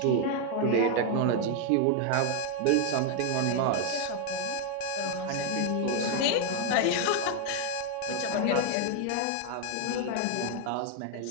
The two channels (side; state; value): both; different; correlation 0.01